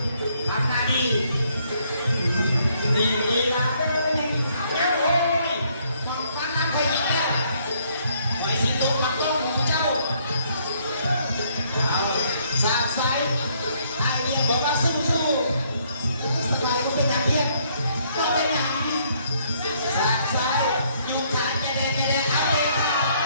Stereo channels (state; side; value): inverted; both; correlation -0.68